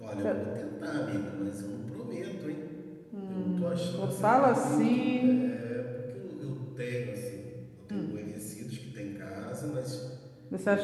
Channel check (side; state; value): both; identical; correlation 1.00